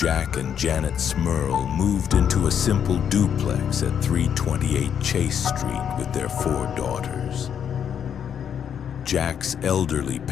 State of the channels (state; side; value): quieter; right; 8.4 dB